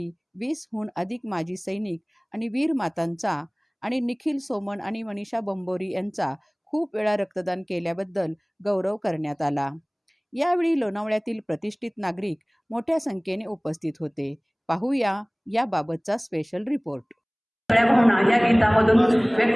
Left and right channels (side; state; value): both; identical; correlation 1.00